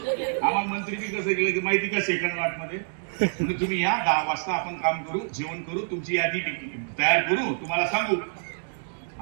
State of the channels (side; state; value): left; silent; digital silence